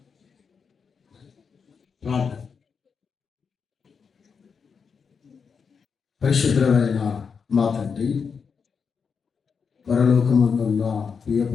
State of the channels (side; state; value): right; quieter; 5.9 dB